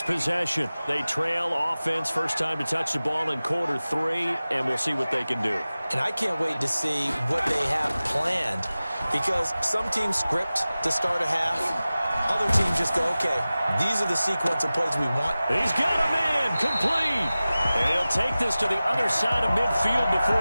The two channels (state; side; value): inverted; both; correlation -0.97